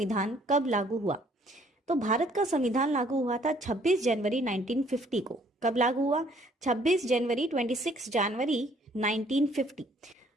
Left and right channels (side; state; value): both; normal; correlation 0.61